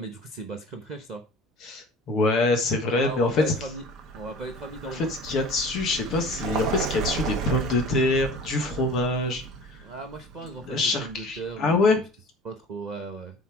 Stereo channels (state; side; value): normal; both; correlation 0.43